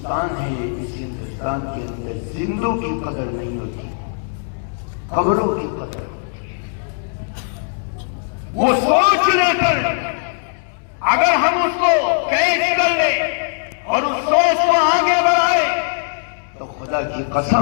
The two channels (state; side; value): silent; right; 64 dB below the other